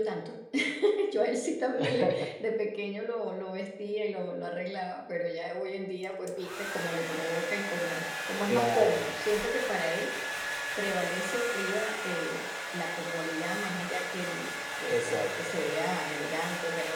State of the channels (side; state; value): both; identical; correlation 1.00